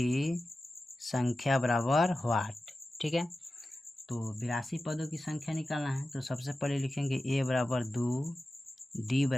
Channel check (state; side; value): normal; both; correlation 0.94